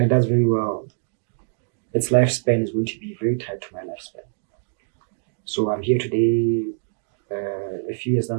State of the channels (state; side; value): silent; left; digital silence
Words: it does very well, its lifespan is going to be very tied to my lifespan. So I'm here today, a few years